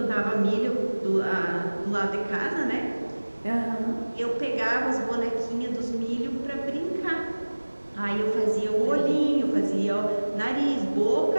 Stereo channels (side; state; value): both; inverted; correlation -1.00